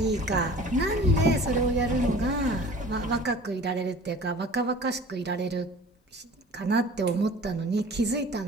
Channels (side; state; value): both; normal; correlation 0.44